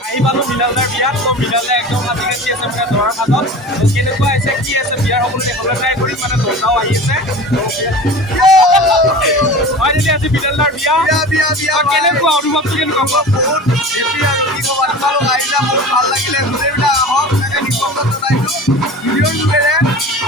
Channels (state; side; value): normal; both; correlation 0.36